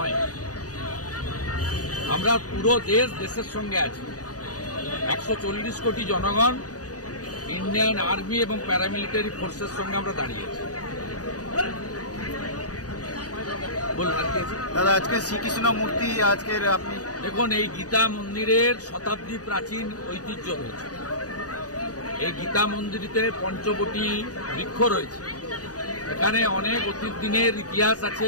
আমরা পুরো দেশের সঙ্গে আছি। 140 কোটি জনগণ, ইন্ডিয়ান আর্মি এবং প্যারামিলিটারি ফোর্সের সঙ্গে আমরা দাঁড়িয়েছি। দাদা, আজকে শ্রীকৃষ্ণ মূর্তি আজকের আপনি দেখুন, এই গীতা মন্দিরের শতাব্দী প্রাচীন ঐতিহ্য রয়েছে। এই গীতা মন্দিরেতে পঞ্চবটি বৃক্ষ রয়েছে। এখানে অনেক অতীত দিনের ইতিহাস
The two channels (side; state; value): right; late; 0.67 ms